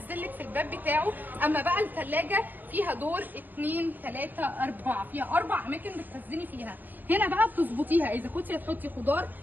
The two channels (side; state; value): left; late; 0.087 ms